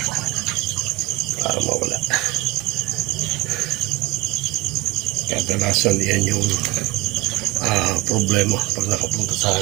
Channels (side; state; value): left; quieter; 18.9 dB